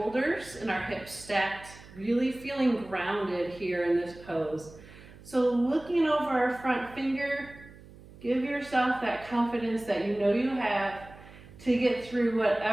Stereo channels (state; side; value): noise; right; hum, 20 dB below the sound